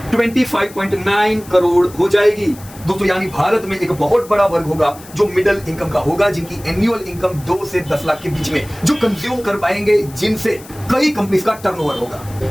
25.9 करोड़ हो जाएगी। दोस्तों यानी भारत में एक बहुत बड़ा वर्ग होगा जो मिडिल इनकम का होगा, जिनकी एनुअल इनकम 2 से 10 लाख के बीच में, जो कंज्यूम कर पाएंगे, जिनसे कई कंपनीज का टर्नओवर होगा।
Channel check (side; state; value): left; noise; hiss, 20 dB below the sound